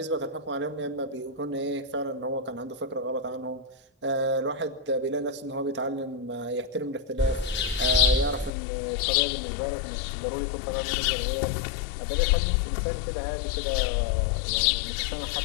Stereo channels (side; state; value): right; drops out; at 8.5 s